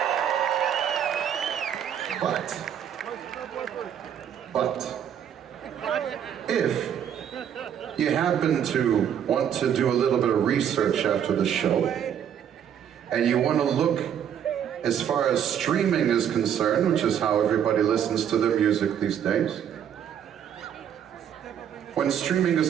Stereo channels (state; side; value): quieter; left; 9.1 dB